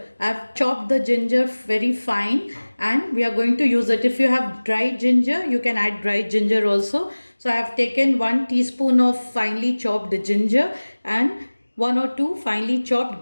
I've chopped the ginger very fine and we are going to use it. If you have dry ginger, you can add dry ginger also. So I have taken 1 teaspoon of finely chopped ginger and 1 or 2 finely chopped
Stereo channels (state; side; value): inverted; both; correlation -1.00